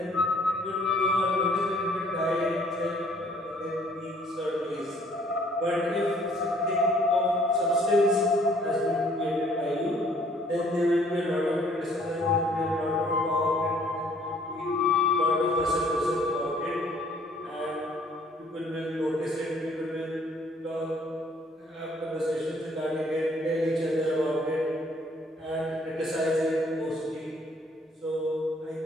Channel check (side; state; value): both; normal; correlation 0.61